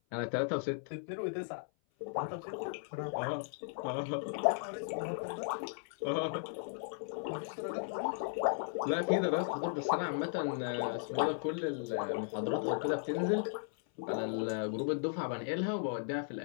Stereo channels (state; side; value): silent; right; 54 dB below the other